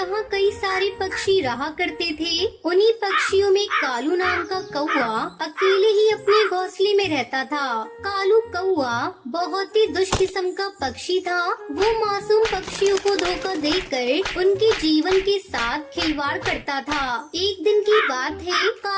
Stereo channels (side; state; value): both; identical; correlation 1.00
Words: कई सारे पक्षी रहा करते थे। उन्हीं पक्षियों में कालू नाम का कौवा अकेले ही अपने घोंसले में रहता था। कालू कौवा बहुत ही दुष्ट किस्म का पक्षी था। वो मासूम पक्षियों को धोखा देकर उनके जीवन के साथ खिलवाड़ करता था। एक दिन की बात है,